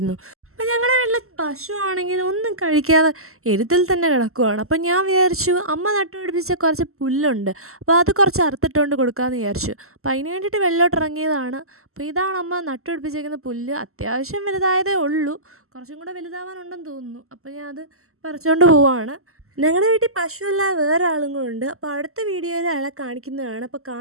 അപ്പം ഞങ്ങളുടെ വീട്ടിൽ പശു ആണെങ്കിൽ ഒന്നും കഴിക്കാതെ എരുത്തിൽ തന്നെ കിടക്കുവാണ്. അപ്പം ഞാൻ വിചാരിച്ചു അമ്മ നട്ടുപിടിപ്പിച്ച കുറച്ച് പുല്ലുണ്ട്, അപ്പോൾ അത് കുറച്ച് അറുത്തിട്ടുകൊണ്ട് കൊടുക്കാമെന്ന് വിചാരിച്ചു. അപ്പോൾ അതിന് വേണ്ടിയിട്ട് വെള്ളോട്ടിറങ്ങിയതാണ്. അപ്പോൾ ഇതാണ് അമ്മ നട്ടുപിടിപ്പിച്ചേക്കുന്ന പുല്ല്. അത്യാവശ്യം വലുതായതേ ഉള്ളൂ, കുറച്ചും കൂടെ വലുതാവാനുണ്ടെന്ന് തോന്നുന്നു. അപ്പോൾ ഞാൻ അത് പറിച്ചുകൊണ്ട് പോവാണ്. ഞങ്ങളുടെ വീട്ടിൽ പശുവല്ല, വേറെ ആളും കൂടെ ഉണ്ട്. അപ്പോൾ അടുത്ത വീഡിയോയിൽ അയാളെ കാണിക്കുന്നതാണ്. അപ്പോൾ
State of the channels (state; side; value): late; left; 0.63 ms